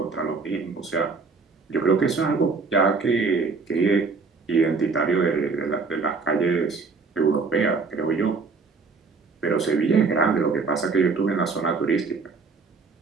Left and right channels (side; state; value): left; quieter; 4.5 dB